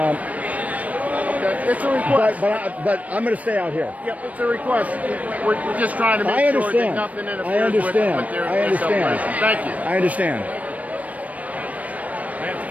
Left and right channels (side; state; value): left; late; 0.069 ms